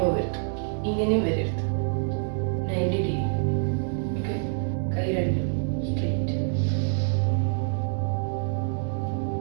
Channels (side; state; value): left; silent; 61 dB below the other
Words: പോകരുത്, ഇങ്ങനെയും വരരുത്. 90 ഡിഗ്രി. ഓക്കെ, കൈ രണ്ടും സ്ട്രെയിറ്റ്.